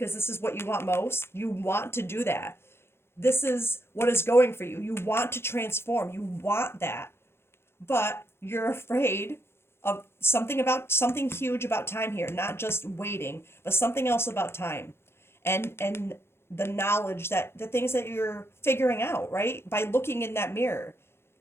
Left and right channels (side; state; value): right; late; 0.12 ms